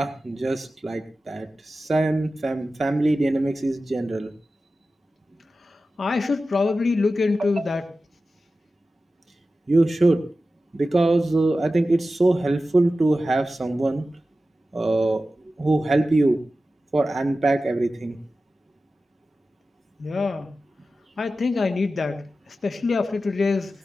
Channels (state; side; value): normal; both; correlation 0.94